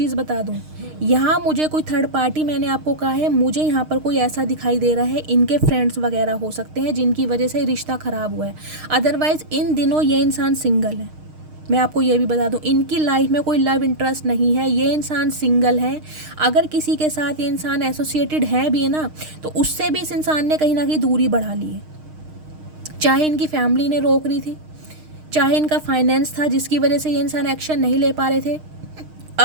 बता दूं, यहाँ मुझे कोई थर्ड पार्टी, मैंने आपको कहा है, मुझे यहाँ पर कोई ऐसा दिखाई दे रहा है, इनके फ्रेंड्स वगैरह हो सकते हैं जिनकी वजह से रिश्ता ख़राब हुआ है। अदरवाइज़ इन दिनों ये इंसान सिंगल है। मैं आपको ये भी बता दूं, इनकी लाइफ में कोई लव इंटरेस्ट नहीं है, ये इंसान सिंगल है। अगर किसी के साथ ये इंसान एसोसिएटेड है भी ना, तो उससे भी इस इंसान ने कहीं ना कहीं दूरी बढ़ा ली है। चाहे इनकी फैमिली ने रोक रही थी, चाहे इनका फाइनेंस था जिसकी वजह से ये इंसान एक्शन नहीं ले पा रहे थे,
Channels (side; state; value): left; late; 6.5 ms